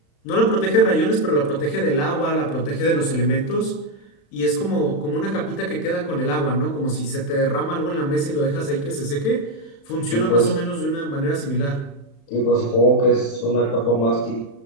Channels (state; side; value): late; right; 35 ms